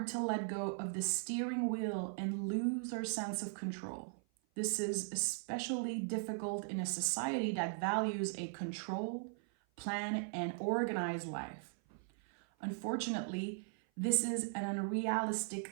to let go of the steering wheel and lose our sense of control. This is especially difficult in a society that values a control, plan, and organized life. Unfortunately, this is an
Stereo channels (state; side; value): silent; left; 52 dB below the other